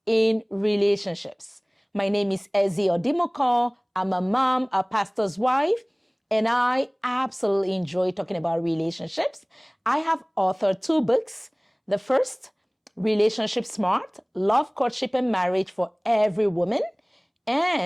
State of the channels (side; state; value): both; identical; correlation 1.00